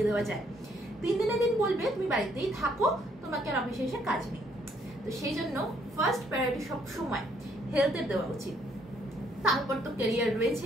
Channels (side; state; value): both; normal; correlation 0.68